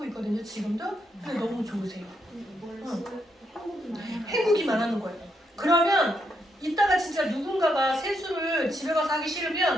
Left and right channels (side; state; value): both; normal; correlation 0.78